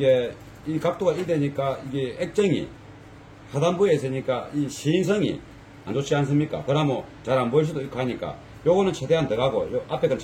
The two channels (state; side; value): identical; both; correlation 1.00